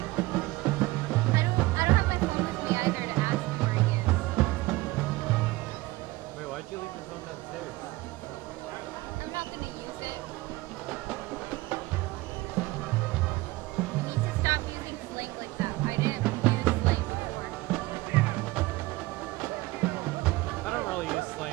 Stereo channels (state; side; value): quieter; left; 20.1 dB